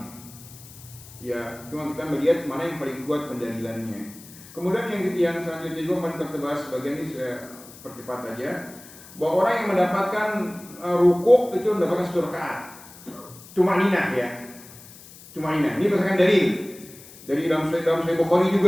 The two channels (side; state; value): left; noise; hiss, 19 dB below the sound